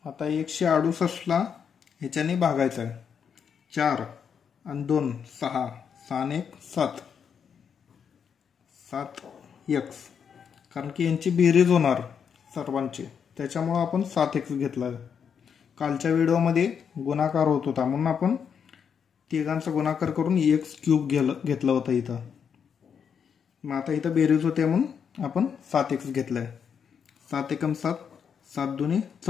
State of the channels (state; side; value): quieter; right; 7.2 dB